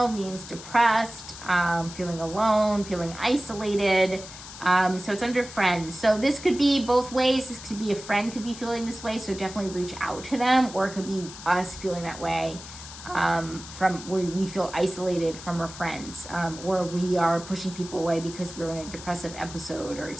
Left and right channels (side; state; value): left; noise; hiss, 14 dB below the sound